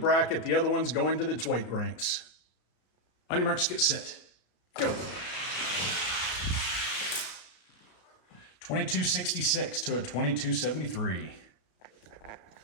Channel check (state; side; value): late; right; 33 ms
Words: The other one's going to its weight ranks. On your marks, get set. Go. 2266 to a 2273.